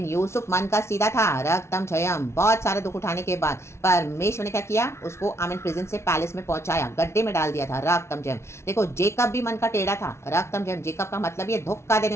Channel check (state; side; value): late; right; 0.13 ms